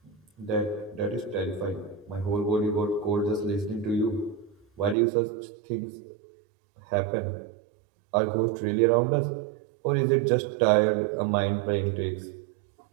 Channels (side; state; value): left; drops out; at 5.0 s